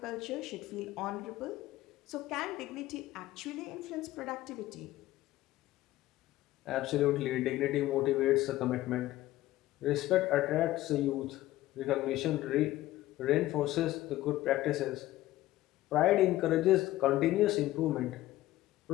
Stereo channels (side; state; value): right; quieter; 15.8 dB